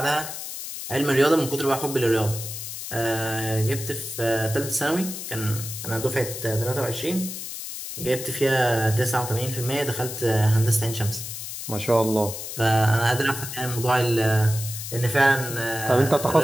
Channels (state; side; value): noise; left; hiss, 8 dB below the sound